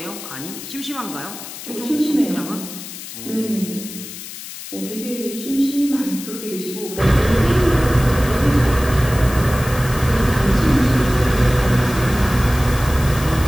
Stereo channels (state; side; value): noise; left; hiss, 12 dB below the sound